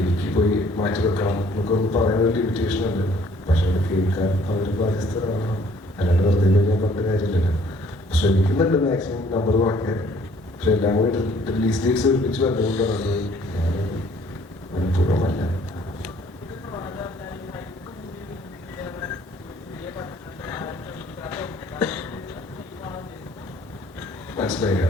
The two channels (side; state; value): both; normal; correlation 0.59